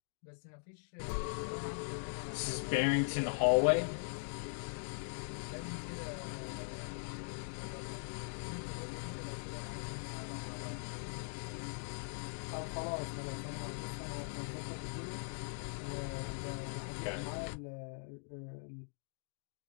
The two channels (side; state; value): right; silent; digital silence